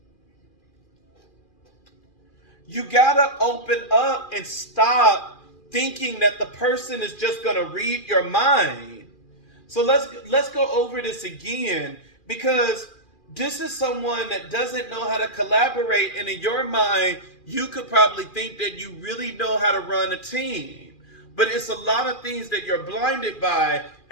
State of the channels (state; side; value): late; right; 2.4 ms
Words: You got to open up and stop thinking that the person is just going to read your mind. So let's go over this again, because this is someone that doesn't know how to collaborate, and in your mind, you could probably think that you really know how to run a team. But it's a lot of things that you're blinded by,